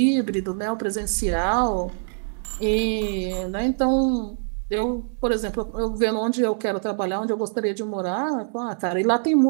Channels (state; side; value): silent; left; digital silence